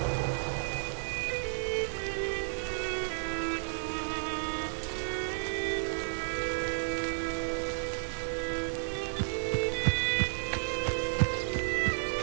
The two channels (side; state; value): left; silent; digital silence